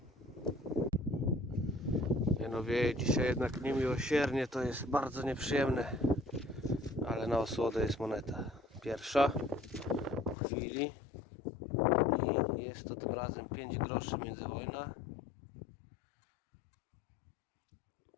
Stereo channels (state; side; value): drops out; right; at 10.4 s